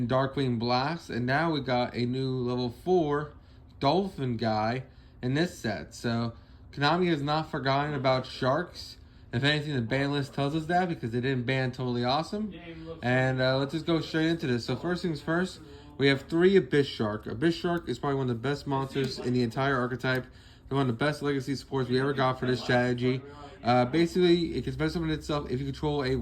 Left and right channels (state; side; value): identical; both; correlation 1.00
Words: Darkwing Blast, and now we got a new level 4 Dolphin guy in this set. So Konami has not forgotten about Sharks. If anything, the ban list tells us that because they didn't ban Totally Awesome. And let's just go straight into this. So first things first, we have 3 Abyss Shark. Abyss Shark is probably one of the best monsters in the entire archetype. They're one of the best legacy supports we ever got for this strategy. Basically, it can special summon itself if you control a